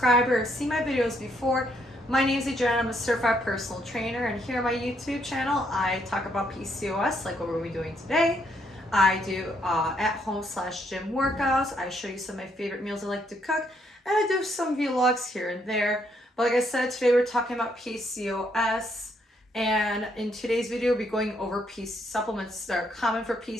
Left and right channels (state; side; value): normal; both; correlation 0.73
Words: or seen my videos before. My name is Adriana, I'm a certified personal trainer, and here on my YouTube channel, I talk about PCOS, like what we're doing today. I do at-home/gym workouts. I show you some of my favorite meals I like to cook, and I do some vlogs here and there. But like I said, today we're talking about PCOS. And in today's video, we'll be going over supplements that are common for